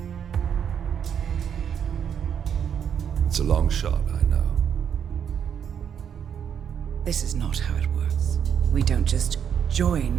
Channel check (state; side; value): quieter; left; 8.2 dB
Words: It's a long shot, I know. This is not how it works. We don't just